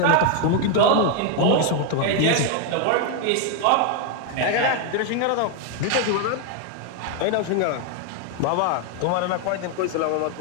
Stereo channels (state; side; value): different; both; correlation 0.01